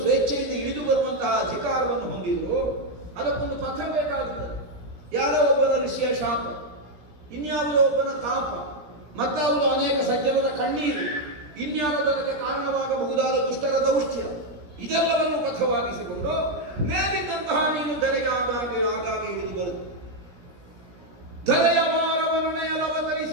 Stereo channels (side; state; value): left; late; 17 ms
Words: ಸ್ವೇಚ್ಛೆಯಿಂದ ಇಳಿದು ಬರುವಂತಹ ಅಧಿಕಾರವನ್ನು ಹೊಂದಿದ್ರು, ಅದಕ್ಕೊಂದು ಪಥ ಬೇಕಾಗುತ್ತದೆ. ಯಾರೋ ಒಬ್ಬನ ಋಷಿಯ ಶಾಪ, ಇನ್ಯಾವುದೋ ಒಬ್ಬನ ತಾಪ, ಮತ್ತಾವುದೋ ಅನೇಕ ಸಜ್ಜನರ ಕಣ್ಣೀರು, ಇನ್ಯಾವುದೋ ಅದಕ್ಕೆ ಕಾರಣವಾಗಬಹುದಾದ ದುಷ್ಟರ ದೌಷ್ಟ್ಯ, ಇದೆಲ್ಲವನ್ನು ಪಥವಾಗಿಸಿಕೊಂಡು ಮೇಲಿದ್ದಂತಹ ನೀನು ಧರೆಗೆ ಆಗಾಗ್ಗೆ ಇಳಿದು ಬರುತ್ತದೆ. ಧರೆಯ ಭಾರವನ್ನು